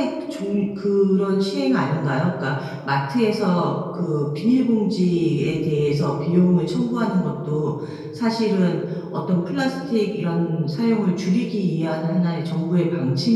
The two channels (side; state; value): both; identical; correlation 1.00